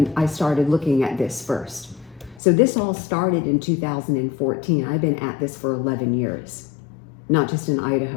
I started looking at this first. So this all started in 2014. I've been at this for 11 years, not just in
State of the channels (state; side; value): drops out; right; at 2.4 s